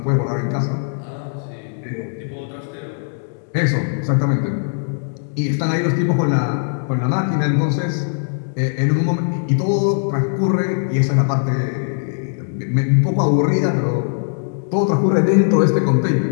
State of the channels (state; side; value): silent; right; digital silence